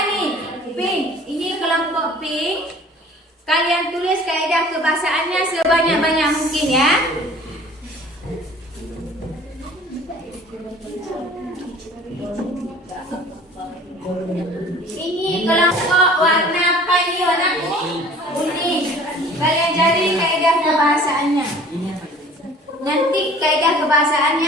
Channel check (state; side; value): normal; both; correlation 0.48